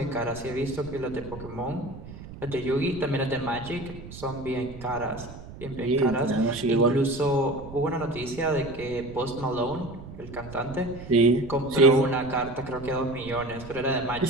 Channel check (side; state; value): right; noise; rumble, 14 dB below the sound